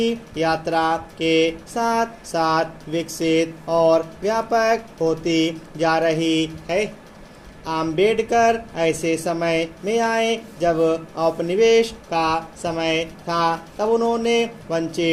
यात्रा के साथ साथ विकसित और व्यापक होती जा रही है। अंबेडकर ऐसे समय में आए जब औपनिवेश का समय था। तब उन्होंने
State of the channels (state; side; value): identical; both; correlation 1.00